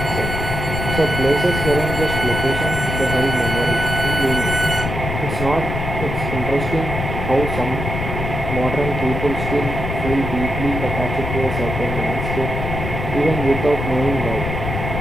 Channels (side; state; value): left; noise; rumble, 4 dB below the sound